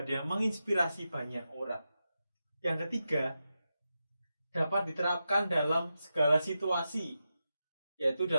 yang menginspirasi banyak orang. Yang ketiga, dapat diterapkan dalam segala situasi, yaitu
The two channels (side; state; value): both; inverted; correlation -0.89